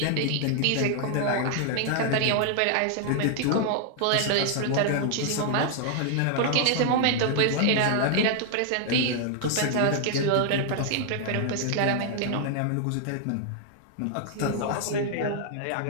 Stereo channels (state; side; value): different; both; correlation 0.00